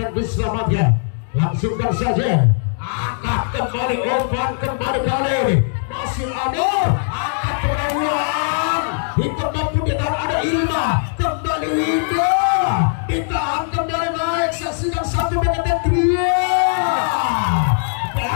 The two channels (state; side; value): silent; right; digital silence